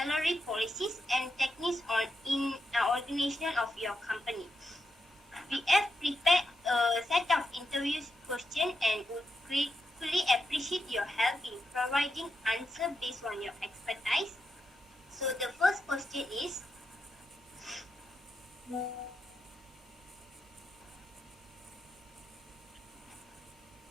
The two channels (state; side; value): normal; both; correlation 0.85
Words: policies, and techniques in organization of your company. We have prepared a set of interview questions and would gratefully appreciate your help in providing answers based on your expertise. So the first question is,